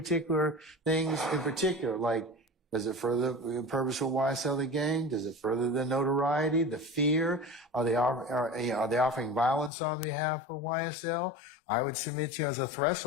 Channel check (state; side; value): drops out; right; at 9.7 s